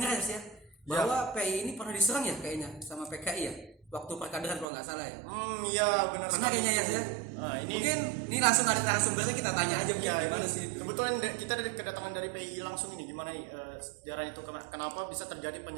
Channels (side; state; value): left; drops out; at 4.7 s